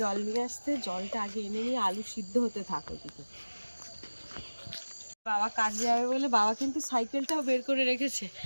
জল নিয়ে আসতে। জলটা আগে এনে নিয়ে আলু সিদ্ধ হতে থাকো দিকে। বাবা কাজে যাবে বলে বাবা কিন্তু সাইকেলটাও বের করে রেখেছে।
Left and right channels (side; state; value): both; inverted; correlation -1.00